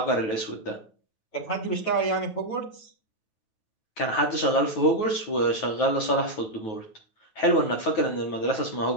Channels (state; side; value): late; right; 9.3 ms